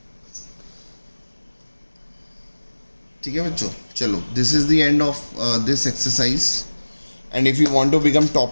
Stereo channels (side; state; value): both; inverted; correlation -1.00